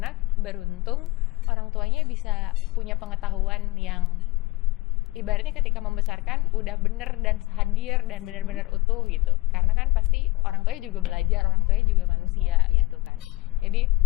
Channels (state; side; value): quieter; right; 20.2 dB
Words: beruntung orang tuanya bisa punya pengetahuan yang ibaratnya ketika membesarkan udah bener dan hadir dan benar-benar utuh gitu, karena kan pasti orang tuanya juga belajar, orang tuanya juga manusia gitu kan. Jadi